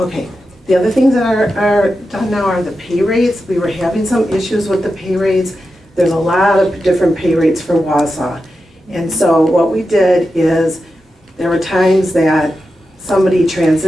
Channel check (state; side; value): normal; both; correlation 0.90